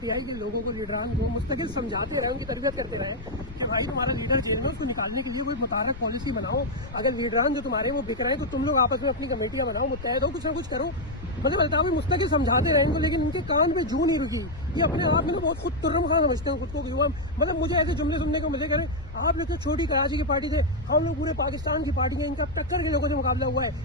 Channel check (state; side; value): noise; left; rumble, 14 dB below the sound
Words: के लोगों को, लीडरान को मुस्तकिल समझाते रहे, उनकी तरबियत करते रहे कि भाई तुम्हारा लीडर जेल में, उसको निकालने के लिए कोई मुतारक पॉलिसी बनाओ। अगर लीडरान जो तुम्हारे वो बिक रहे हैं तो तुम लोग आपस में अपनी कमेटियां बनाओ, मुत्तहद हो, कुछ ना कुछ करो। मतलब अल्ताफ मुस्तकिल समझाते रहे इनको, लेकिन इनके कान पे जू नहीं रुकी। ये अपने आप में ना बहुत खुद तुर्रम खान समझते हैं खुद को कि वो, मतलब मुझे ऐसे जुमले सुनने को मिले करें, आप लोग तो छोटी कराची की पार्टी थे, हम लोग पूरे पाकिस्तान की पार्टी है, इनका टक्कर के लोगों से मुकाबला हुआ